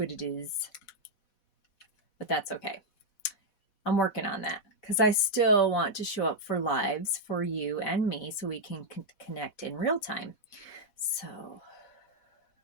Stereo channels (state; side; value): late; right; 4.1 ms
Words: it is. But that's okay. I'm working on that because I still want to show up for lives for you and me so we can connect in real time. So,